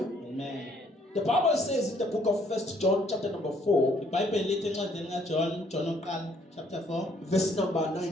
The Bible says in the book of 1 John chapter number 4, iBhayibheli lithi encwadini kaJohn, John oqala chapter 4, verse number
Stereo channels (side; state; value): both; normal; correlation 0.65